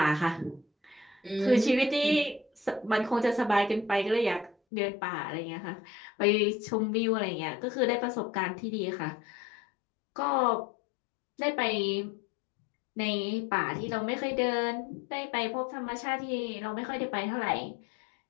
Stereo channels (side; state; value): right; drops out; at 4.5 s